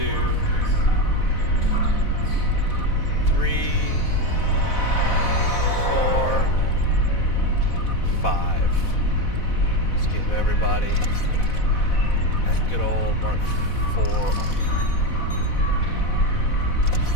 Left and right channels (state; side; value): late; right; 4.1 ms